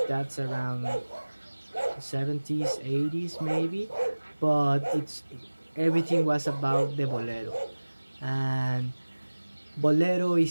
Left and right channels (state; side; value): inverted; both; correlation -1.00